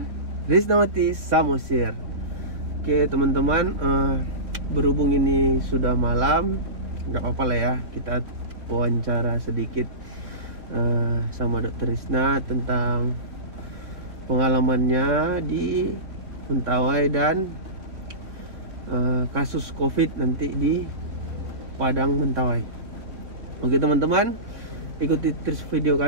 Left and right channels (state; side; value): late; left; 3.7 ms